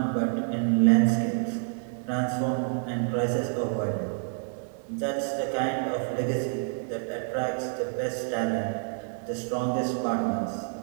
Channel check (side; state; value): left; silent; 59 dB below the other